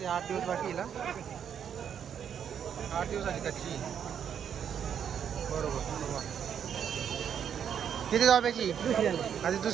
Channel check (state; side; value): quieter; left; 8.3 dB